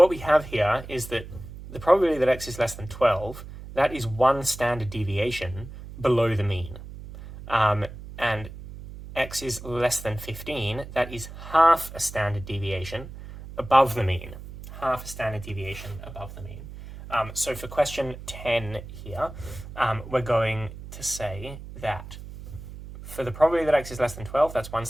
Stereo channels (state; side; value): noise; right; hum, 13 dB below the sound